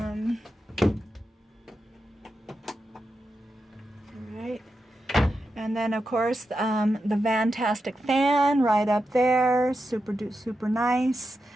right. And then, of course, the fantastic fan right up there, super nice.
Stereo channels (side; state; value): both; normal; correlation 0.88